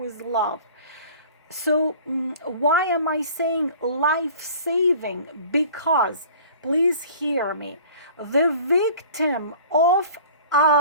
love. So why am I saying life-saving? Because, please hear me, the victim of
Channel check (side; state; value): both; inverted; correlation -0.46